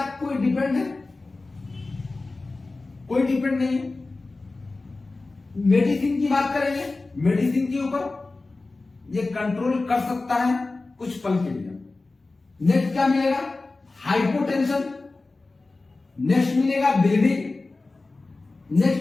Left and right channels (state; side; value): quieter; right; 3.4 dB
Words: कोई डिपेंड है? कोई डिपेंड नहीं है। मेडिसिन की बात करेंगे, मेडिसिन के ऊपर ये कंट्रोल कर सकता है कुछ पल के लिए। नेक्स्ट क्या मिलेगा? हाइपोटेंशन। नेक्स्ट मिलेगा ब्लीडिंग।